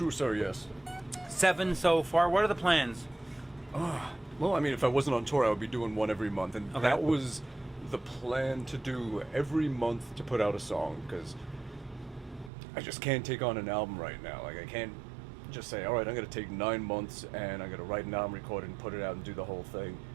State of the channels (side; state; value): left; drops out; at 12.5 s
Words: sir, yes. 7 so far. What are the plans? Well, I mean, if I wasn't on tour, I would be doing one every month. And Okay. that was the plan, to do every month to put out a song, because I just can't take on an album right now. Like, I can't just say, all right, I'm going to take 9 months and I'm going to write an album, record it, and put it out and do the whole thing.